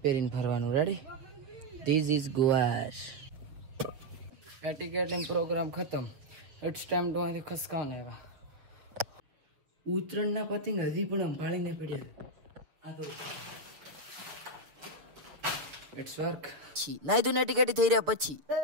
પહેરીને ફરવાનું. રેડી? ધીસ ઇઝ ગુવાર. એટિકેટિંગ પ્રોગ્રામ ખતમ. ઇટ્સ ટાઈમ ટુ અહીંથી ખસકાવને. ઉત્તરાયણના પતંગ હજી પણ સંભાળીને પડ્યા. આ તો ઇટ્સ વર્ક. નાઈ ધોઈને એટિકેટી થઈ રહ્યા પછી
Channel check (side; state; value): left; late; 6.8 ms